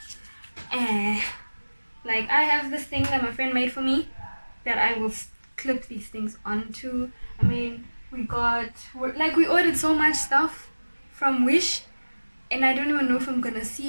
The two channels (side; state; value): both; inverted; correlation -1.00